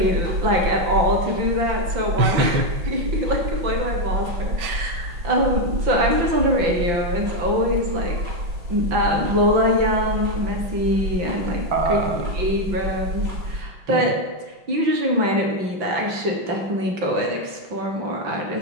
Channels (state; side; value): late; left; 5.8 ms